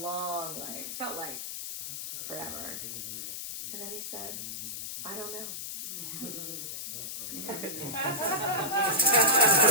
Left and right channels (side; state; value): left; noise; hiss, 6 dB below the sound